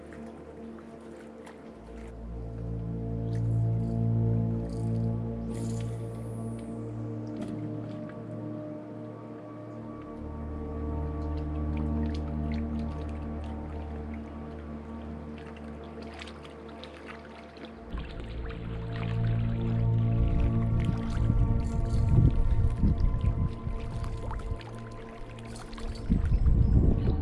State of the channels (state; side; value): identical; both; correlation 1.00